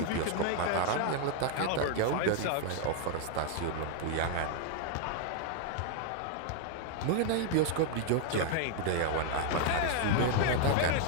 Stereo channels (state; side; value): different; both; correlation 0.00